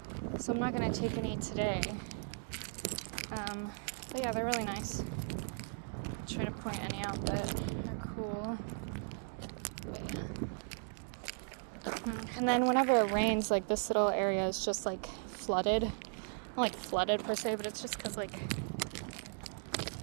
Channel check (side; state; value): left; silent; 53 dB below the other